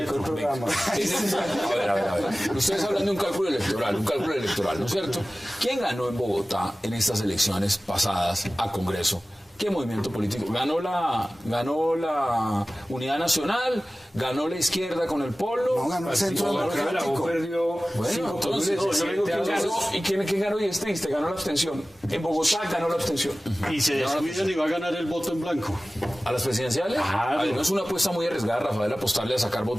A ver. Ustedes hablan de un cálculo electoral, ¿no es cierto? ¿Quién ganó en Bogotá en estas elecciones pasadas a Congreso? ¿Qué movimiento político? ¿Ganó la Unidad Nacional? ¿Ganó la izquierda con el Polo? No, ganó el Centro Democrático. Bueno, entonces, yo digo que ganó, ¿y quién ganó? Y es triste, ganó la abstención. En Bogotá ganó la abstención. Y se descuidan y va a ganar el voto en blanco. ¿A las presidenciales? Claro. No es una apuesta muy arriesgada, Rafael, apostarle a sacar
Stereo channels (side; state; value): both; normal; correlation 0.97